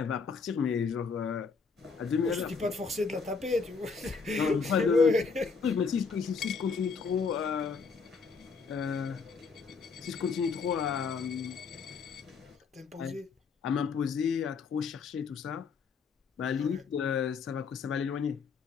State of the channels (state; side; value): quieter; right; 5.1 dB